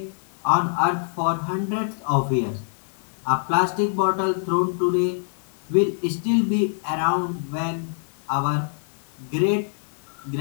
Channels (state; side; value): silent; right; digital silence